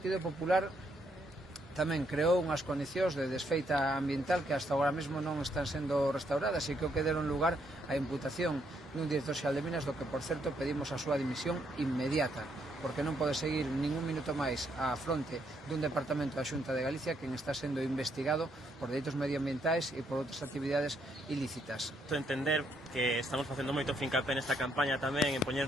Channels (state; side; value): normal; both; correlation 0.74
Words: Popular tamén creou unhas condicións de desfeita ambiental que hasta agora mesmo non están sendo restauradas e que deron lugar á imputación dun director xeral de Minas, do que, por certo, pedimos a súa dimisión inmediata, porque non pode seguir ningún minuto máis á fronte dun departamento da Xunta de Galicia que está sendo investigado por delitos medioambientais e por outras actividades ilícitas. Entender que estamos facendo moito fincapé nesta campaña tamén en poñer